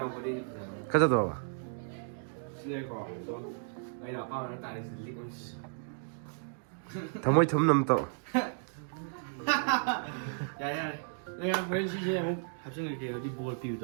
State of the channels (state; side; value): silent; left; digital silence